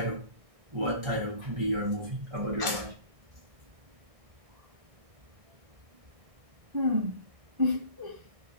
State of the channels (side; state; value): left; late; 1.6 ms